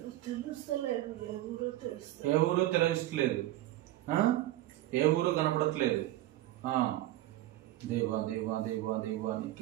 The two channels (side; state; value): left; quieter; 15.3 dB